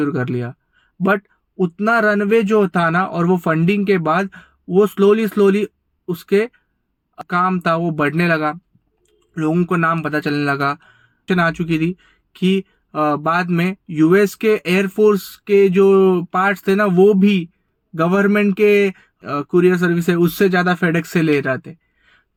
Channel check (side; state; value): both; identical; correlation 1.00